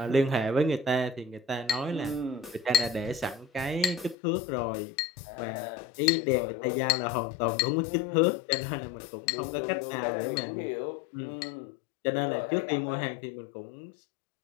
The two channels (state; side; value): drops out; right; at 4.2 s